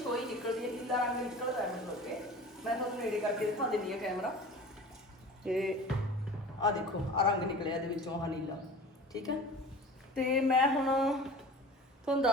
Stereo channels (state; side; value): normal; both; correlation 0.39